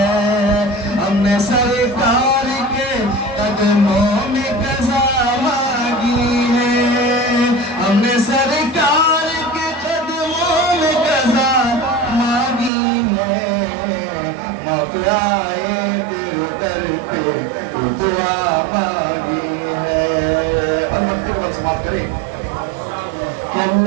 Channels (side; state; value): left; drops out; at 12.7 s